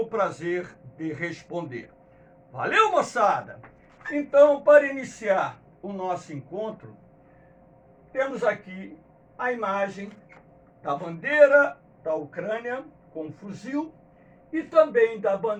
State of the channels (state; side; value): identical; both; correlation 1.00